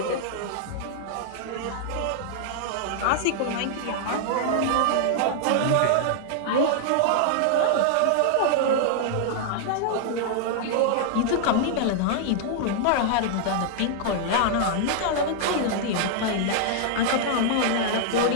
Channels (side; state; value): both; different; correlation -0.01